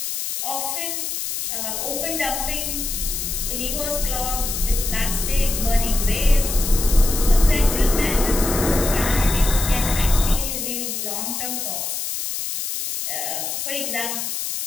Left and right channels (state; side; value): noise; left; hiss, 3 dB below the sound